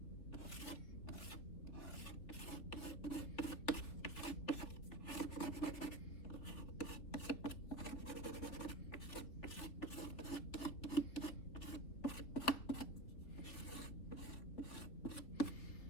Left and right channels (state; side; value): late; right; 3.7 ms